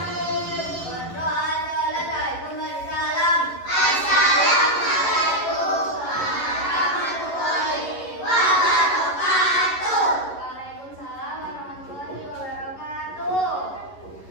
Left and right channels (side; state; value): right; late; 11 ms